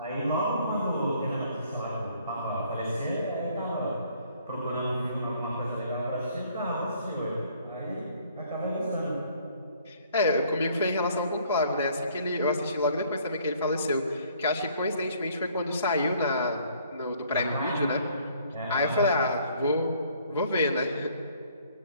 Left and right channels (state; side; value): inverted; both; correlation -0.61